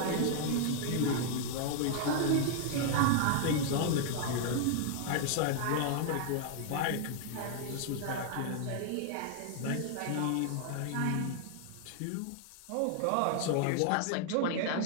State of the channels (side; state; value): both; different; correlation 0.00